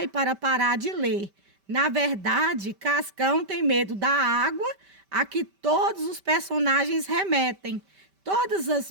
para parar de ler. Na verdade, Cascão tem medo da água a que todos os personagens remetem. Todos os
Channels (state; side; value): late; left; 5.1 ms